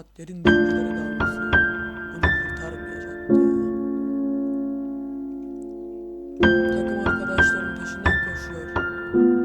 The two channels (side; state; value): both; identical; correlation 1.00